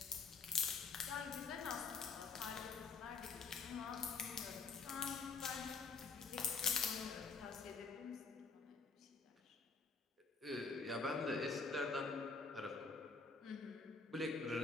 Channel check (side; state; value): right; quieter; 4.5 dB